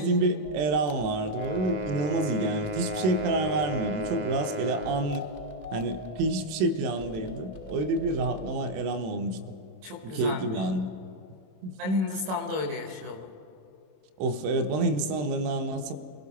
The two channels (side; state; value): left; late; 27 ms